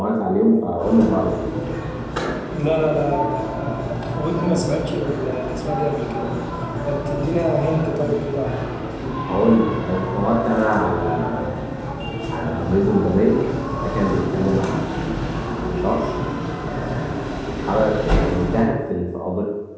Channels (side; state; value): both; identical; correlation 1.00